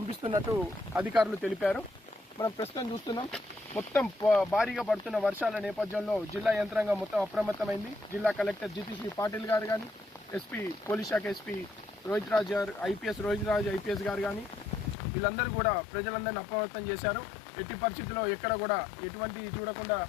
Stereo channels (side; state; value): right; drops out; at 15.0 s